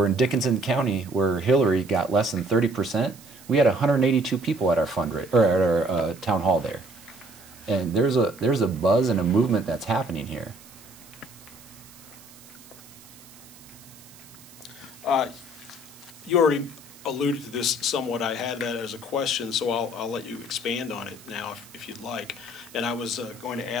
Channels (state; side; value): noise; right; hiss, 21 dB below the sound